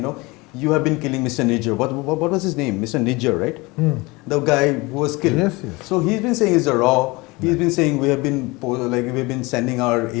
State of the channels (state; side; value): quieter; right; 24.0 dB